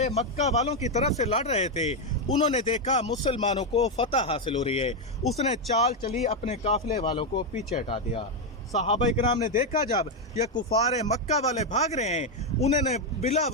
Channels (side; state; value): both; normal; correlation 0.04